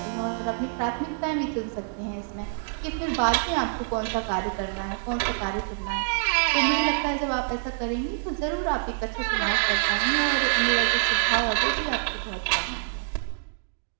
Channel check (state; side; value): silent; left; digital silence